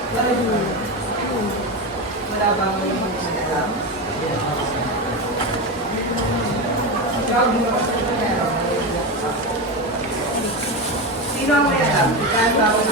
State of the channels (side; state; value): both; normal; correlation 0.17